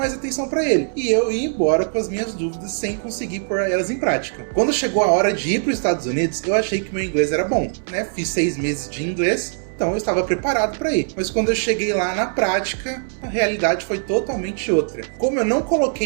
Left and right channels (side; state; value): left; silent; digital silence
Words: atenção para ele. E eu ia embora com as minhas dúvidas sem conseguir pôr elas em prática. Quando chegou a hora de ir para os Estados Unidos, eu achei que meu inglês era bom, né? Fiz 6 meses de inglês, então eu estava preparado para ir. Mas quando eu cheguei lá na prática, a realidade foi totalmente outra. Como eu não